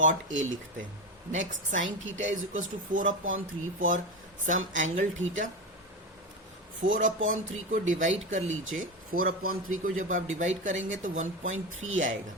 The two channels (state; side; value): normal; both; correlation 0.19